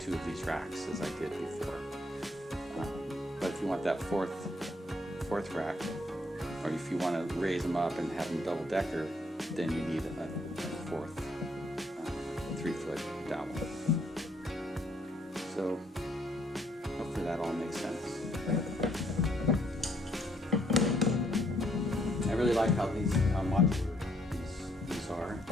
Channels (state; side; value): normal; both; correlation 0.69